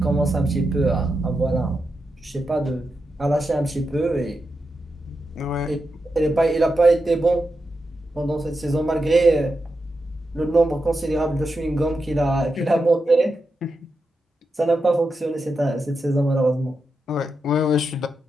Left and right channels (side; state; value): both; normal; correlation 0.88